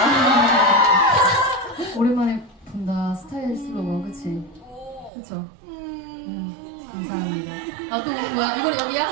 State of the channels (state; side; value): drops out; left; at 5.1 s